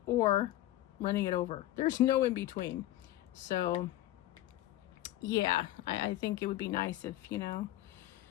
or running it over. There's no in between. So yeah, I think it would be nice if, you know,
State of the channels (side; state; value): right; quieter; 14.9 dB